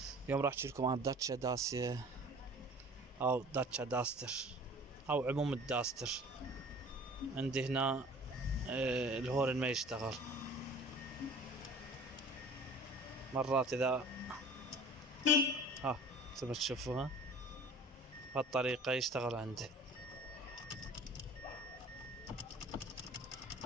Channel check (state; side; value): normal; both; correlation 0.46